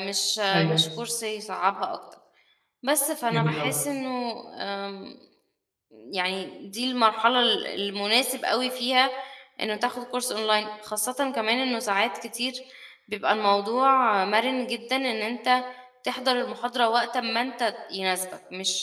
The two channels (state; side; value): identical; both; correlation 1.00